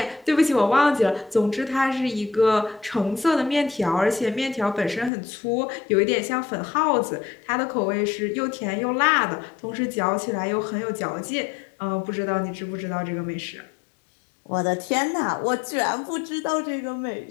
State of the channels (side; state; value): right; drops out; at 5.1 s